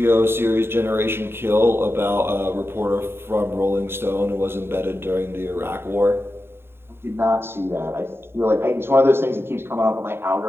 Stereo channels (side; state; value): left; late; 0.11 ms